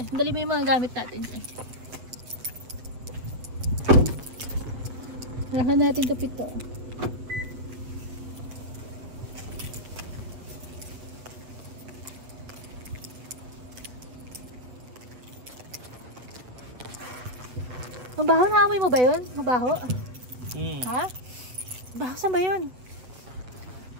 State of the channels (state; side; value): late; left; 8.0 ms